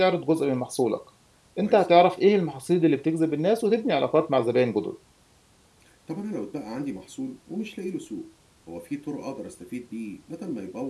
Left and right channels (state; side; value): identical; both; correlation 1.00